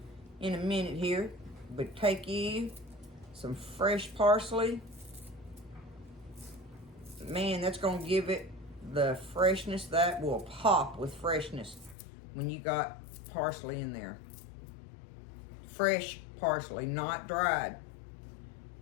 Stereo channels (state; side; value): drops out; right; at 12.0 s